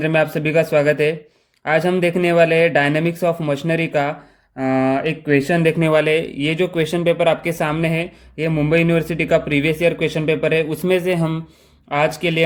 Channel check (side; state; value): both; identical; correlation 1.00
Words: में आप सभी का स्वागत है। आज हम देखने वाले हैं डायनेमिक्स ऑफ मशीनरी का एक क्वेश्चन देखने वाले हैं। ये जो क्वेश्चन पेपर आपके सामने है, ये मुंबई यूनिवर्सिटी का प्रीवियस ईयर क्वेश्चन पेपर है। उसमें से हम आज के लिए